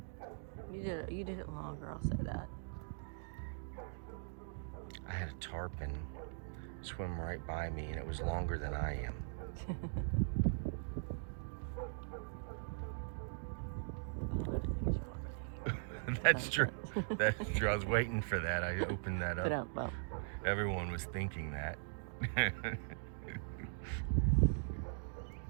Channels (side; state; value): left; silent; digital silence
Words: You did it longer, I'll say that. I had a tarpon swim right by me, and it was longer than I am. A lot of things are longer than you. That's true. That's true. I was waiting for that. I opened that But up. well, Everyone was thinking that.